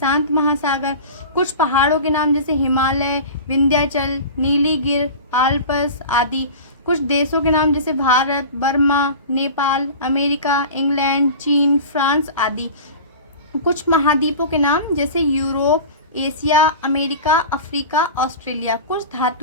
महासागर। कुछ पहाड़ों के नाम जैसे हिमालय, विंध्याचल, नीलीगिर, आल्प्स आदि। कुछ देशों के नाम जैसे Bharat, Burma, Nepal, America, England, चीन, फ्रांस आदि। कुछ महाद्वीपों के नाम जैसे Europe, Asia, America, Africa, Australia. कुछ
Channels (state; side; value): inverted; both; correlation -0.34